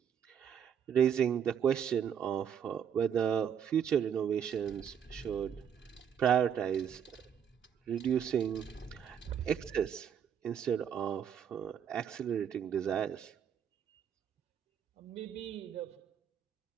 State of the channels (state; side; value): quieter; left; 8.4 dB